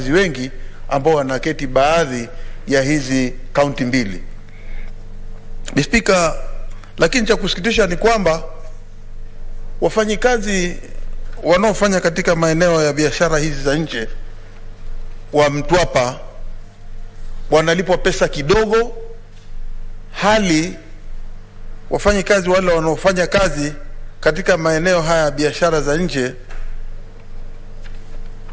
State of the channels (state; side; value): identical; both; correlation 1.00